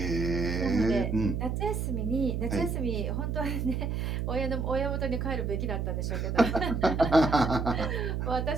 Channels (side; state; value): right; noise; hum, 1 dB below the sound